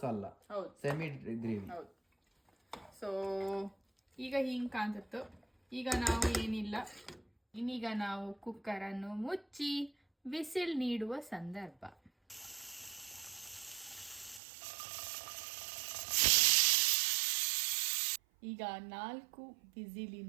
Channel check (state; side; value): drops out; left; at 14.4 s